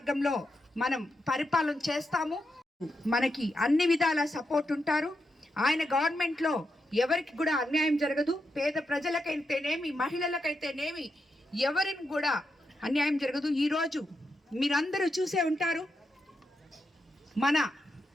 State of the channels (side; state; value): both; normal; correlation 0.85